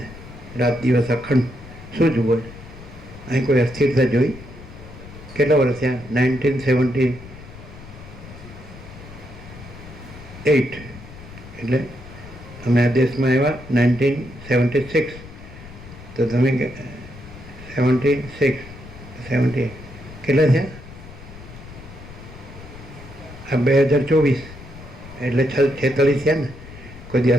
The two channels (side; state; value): left; noise; rumble, 16 dB below the sound